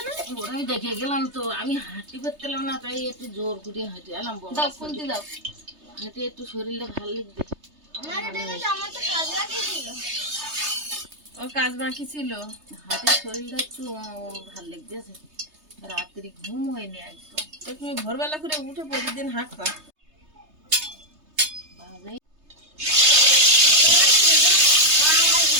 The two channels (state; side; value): late; left; 3.3 ms